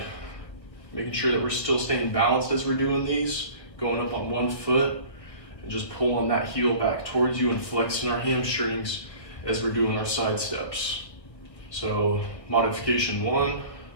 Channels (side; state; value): right; late; 1.5 ms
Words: Making sure that we're still staying balanced as we're doing these. Going up on one foot and just pulling that heel back towards you and flexing our hamstrings as we're doing our side steps. So modification 1,